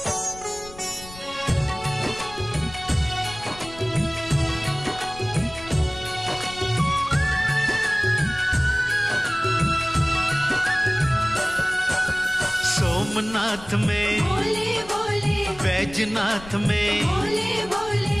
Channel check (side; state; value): left; noise; rumble, 18 dB below the sound